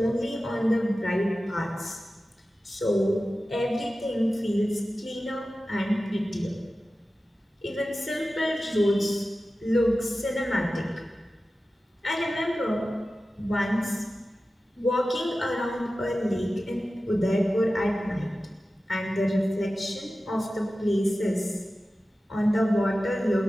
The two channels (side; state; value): both; normal; correlation 0.95